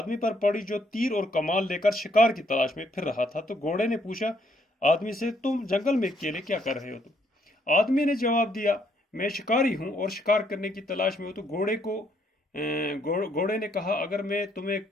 پر پڑی جو تیر اور کمان لے کر شکار کی تلاش میں پھر رہا تھا۔ تو گھوڑے نے پوچھا آدمی سے، تم جنگل میں اکیلے کیا کر رہے ہو؟ تو آدمی نے جواب دیا، میں شکاری ہوں اور شکار کرنے کی تلاش میں ہوں۔ تو گھوڑے نے کہا، اگر میں تمہیں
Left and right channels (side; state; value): both; normal; correlation 0.70